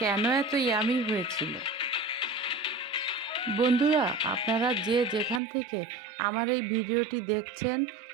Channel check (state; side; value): drops out; left; at 5.4 s